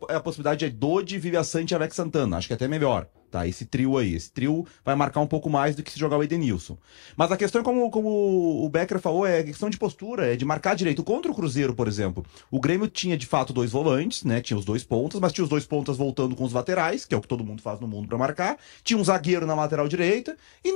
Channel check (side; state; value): right; silent; 61 dB below the other